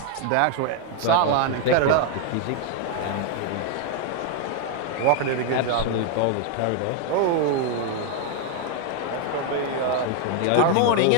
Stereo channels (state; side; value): different; both; correlation 0.00